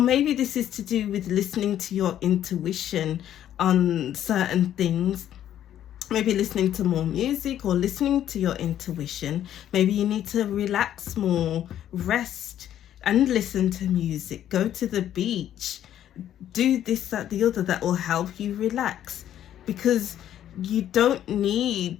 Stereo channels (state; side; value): quieter; right; 11.1 dB